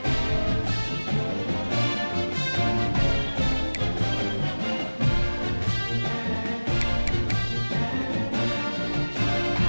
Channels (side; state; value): both; inverted; correlation -1.00